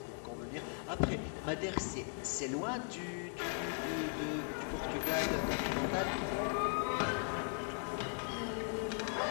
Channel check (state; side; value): silent; right; 52 dB below the other